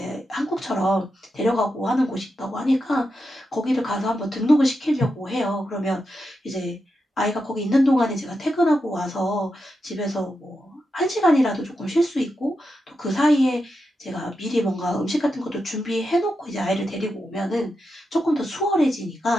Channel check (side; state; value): both; normal; correlation 0.87